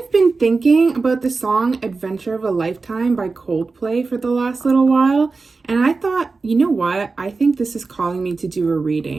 been thinking about the song Adventure of a Lifetime by Coldplay for the last little while, and I thought, you know what, I think this is calling me to do a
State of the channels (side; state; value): left; quieter; 4.1 dB